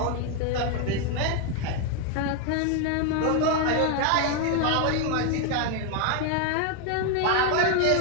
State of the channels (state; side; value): different; both; correlation 0.01